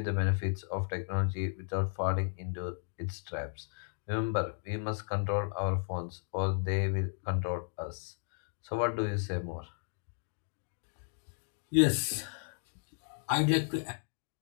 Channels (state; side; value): silent; right; digital silence